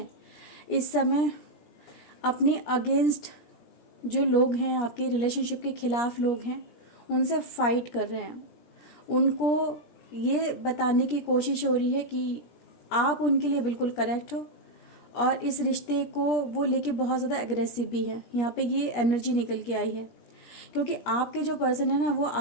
इस समय अपने अगेंस्ट जो लोग हैं, आपके रिलेशनशिप के खिलाफ लोग हैं, उनसे फाइट कर रहे हैं। उनको ये बताने की कोशिश हो रही है कि आप उनके लिए बिल्कुल करेक्ट हो और इस रिश्ते को वो लेके बहुत ज़्यादा एग्रेसिव भी है। यहाँ पे ये एनर्जी निकल के आई है क्योंकि आपके जो पर्सन है ना, वो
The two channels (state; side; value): late; right; 17 ms